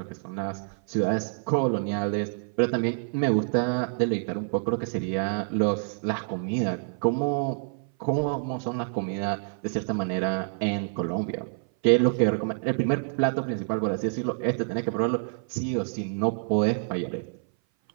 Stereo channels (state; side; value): silent; left; 57 dB below the other